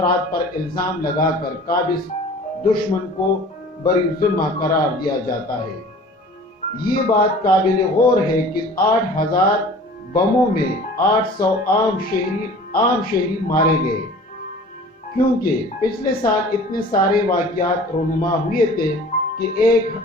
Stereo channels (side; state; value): both; normal; correlation 0.45